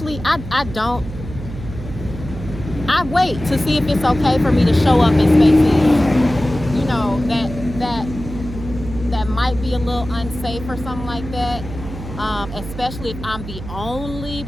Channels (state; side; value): noise; right; hum, 11 dB below the sound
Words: I wait to see if it's okay for me to show up in spaces, you know, that might be a little unsafe or something like that. Especially if I'm the only